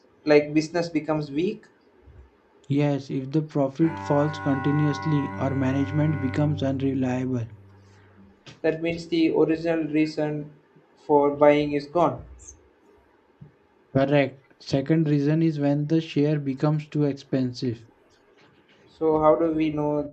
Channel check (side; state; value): both; identical; correlation 1.00